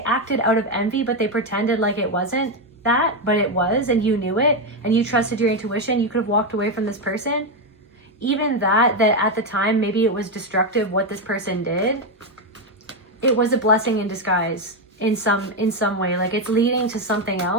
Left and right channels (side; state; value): both; normal; correlation 0.07